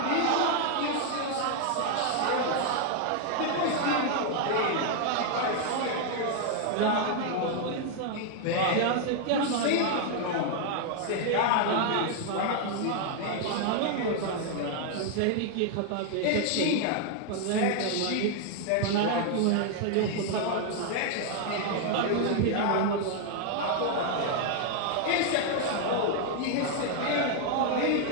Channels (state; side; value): different; both; correlation 0.00